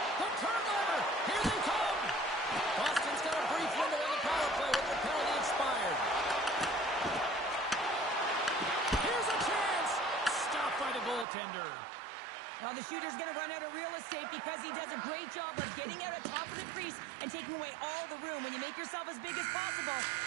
The turnover! Here they come! Boston's got a brief window on the power play with their penalty expired. Here's a chance! Stopped by the goaltender. Now the shooter's going to run out of real estate because he does a great job of getting out at top of the crease and taking away all the room. When you make yourself as big as possible,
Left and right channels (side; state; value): left; drops out; at 11.2 s